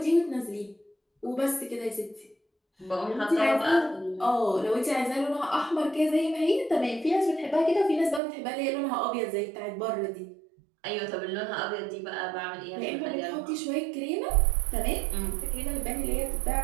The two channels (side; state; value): left; drops out; at 8.2 s